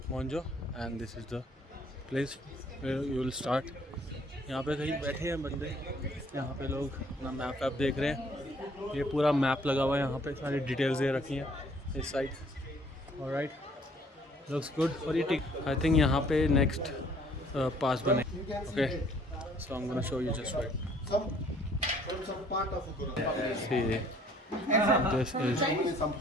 मोन्जो and this is the place where you will start. यहाँ पे कहीं बैठे हैं बंदे, यहाँ पे लोग अपना मैप वैप देख रहे हैं। ये पूरा मैप लगा हुआ है, यहाँ पे सारी डिटेल्स दे रखी हैं इस साइड। Alright, looks good. और ये टिक आई थिंक यहाँ पे नेक्स्ट पास बने। Okay, so I am gonna show you just right. See, this is some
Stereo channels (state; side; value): normal; both; correlation 0.60